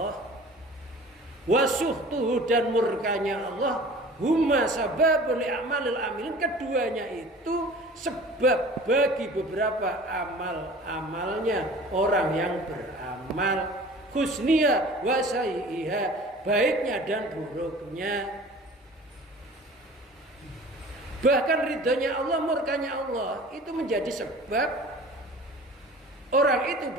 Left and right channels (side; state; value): both; normal; correlation 0.44